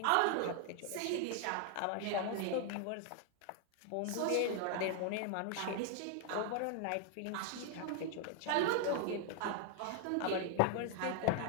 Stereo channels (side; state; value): both; different; correlation 0.00